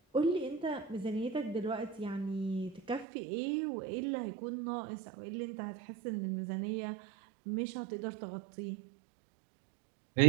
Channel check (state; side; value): drops out; left; at 3.1 s